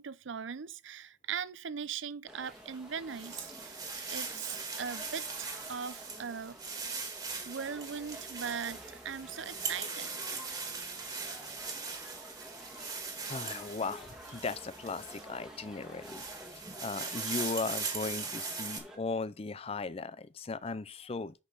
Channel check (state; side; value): normal; both; correlation 0.10